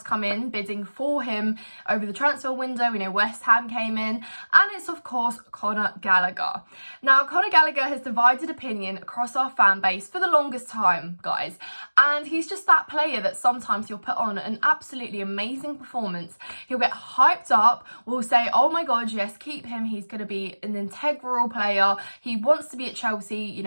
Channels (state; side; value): inverted; both; correlation -1.00